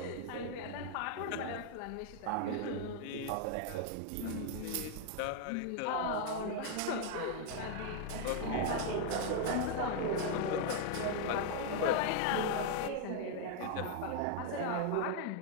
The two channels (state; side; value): different; both; correlation 0.00